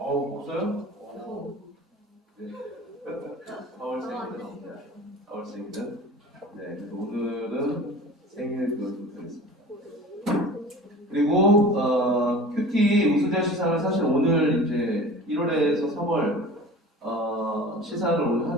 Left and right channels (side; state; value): both; normal; correlation 0.39